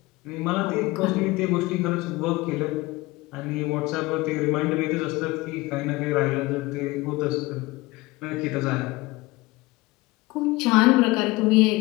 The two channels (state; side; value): quieter; right; 21.3 dB